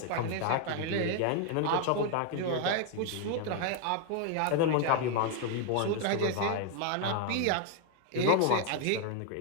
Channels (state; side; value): different; both; correlation 0.00